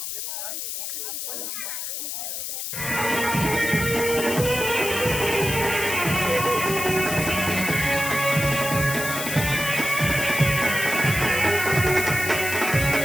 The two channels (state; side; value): noise; left; hiss, 5 dB below the sound